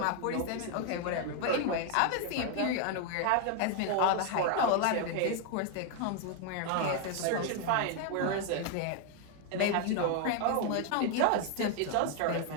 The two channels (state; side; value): different; both; correlation 0.01